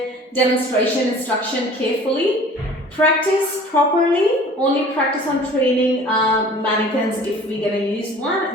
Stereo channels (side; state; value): both; normal; correlation 0.47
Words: demonstration instruction carefully. Practice properly. Only practice on training mannequins if we're gonna use